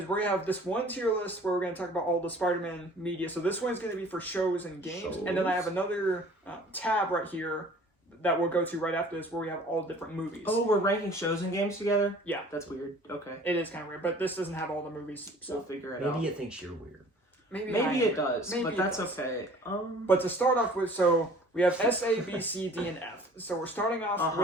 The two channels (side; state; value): both; normal; correlation 0.50